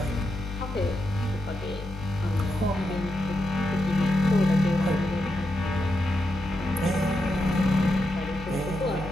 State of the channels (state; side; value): normal; both; correlation 0.85